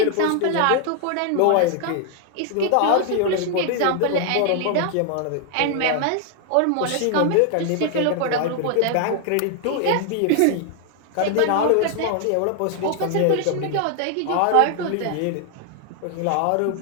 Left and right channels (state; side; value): different; both; correlation 0.00